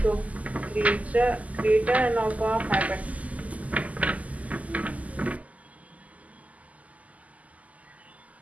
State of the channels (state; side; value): late; left; 0.074 ms